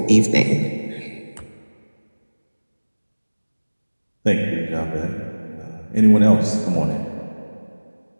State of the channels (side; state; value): both; inverted; correlation -1.00